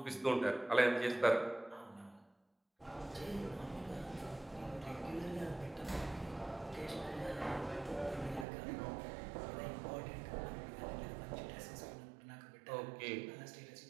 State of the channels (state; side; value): drops out; left; at 8.5 s